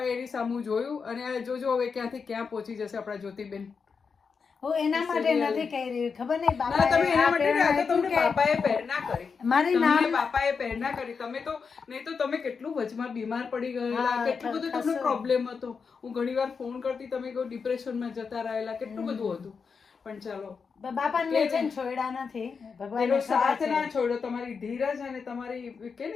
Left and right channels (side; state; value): right; quieter; 5.5 dB